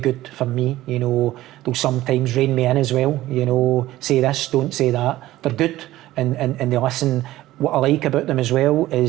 for me. You know, they'll sometimes rein me in as well. You know, say this, don't say that. They're good and they listen. What I like about them as well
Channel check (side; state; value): left; quieter; 15.8 dB